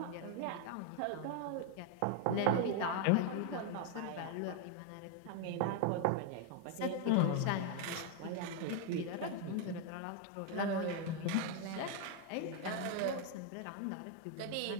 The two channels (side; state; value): both; different; correlation 0.00